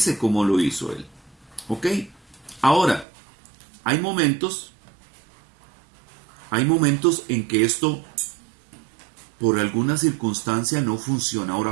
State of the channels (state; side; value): drops out; left; at 3.1 s